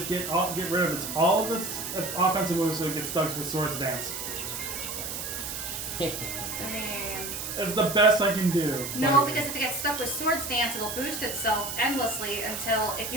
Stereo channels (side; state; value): right; noise; hiss, 5 dB below the sound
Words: get rid of all of its offensive moves so it gets stuck with Swords Dance. I mean. That's the best I can do. No, because if it gets stuck with Swords Dance, it'll boost itself endlessly until, if